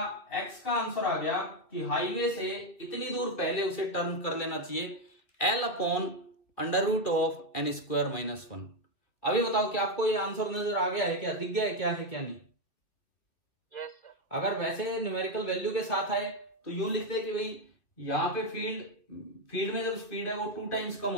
x का आंसर आ गया कि हाईवे से इतनी दूर पहले उसे टर्न कर लेना चाहिए l upon under root of n² minus 1। अभी बताओ कि आपको ये आंसर नजर आ गया है क्या, दिख गया है क्या है क्या नहीं? Yes sir. अगर वैसे न्यूमेरिकल वैल्यू के साथ आए तो यूं लिखते हैं कि भाई यहाँ पे फील्ड में जब स्पीड है वो 2 टाइम्स कम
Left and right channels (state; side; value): late; right; 2.5 ms